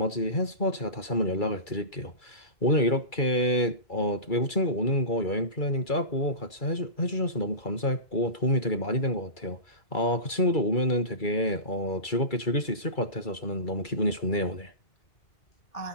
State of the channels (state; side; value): late; right; 2.3 ms